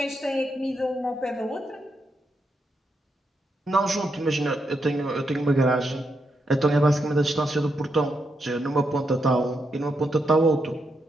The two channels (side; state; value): both; normal; correlation 0.82